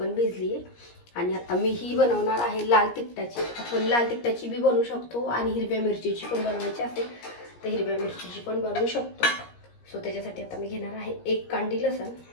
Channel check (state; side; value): late; right; 17 ms